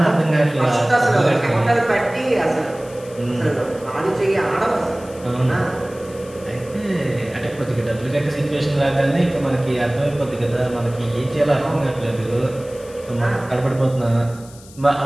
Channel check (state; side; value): noise; left; hiss, 22 dB below the sound